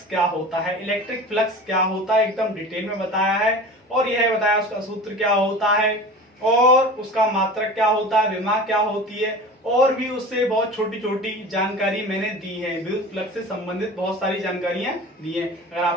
क्या होता है, इलेक्ट्रिक फ्लक्स क्या होता है, एकदम डिटेल में बताया है। और यह बताया उसका सूत्र क्या होता है और उसका मात्रक क्या होता है, विमा क्या होती है, और भी उससे बहुत छोटी छोटी जानकारी मैंने दी है। विद्युत फ्लक्स से संबंधित बहुत सारी जानकारियां दी है। अगर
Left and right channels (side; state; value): both; normal; correlation 0.36